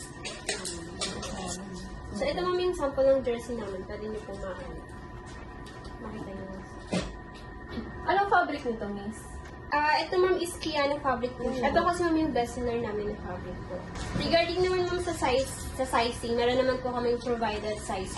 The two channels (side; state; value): both; identical; correlation 1.00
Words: So, ito ma'am yung sample ng jersey namin. Pwede niyo pong makita niyo. Anong fabric nito, miss? Ito ma'am is Kiana fabric po siya. Ito kasi ma'am yung bestseller namin ng fabric po. Regarding naman ma'am sa sizing, meron naman po kaming provided size